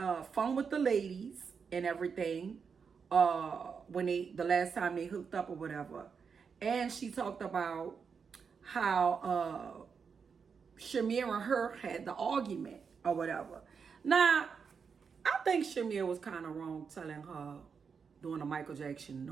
fun with the ladies and everything when the last time they hooked up or whatever. And she talked about how Shamir and her had the argument or whatever. Now, I think Shamir was kind of wrong telling her doing a Michael Jackson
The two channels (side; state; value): left; quieter; 6.0 dB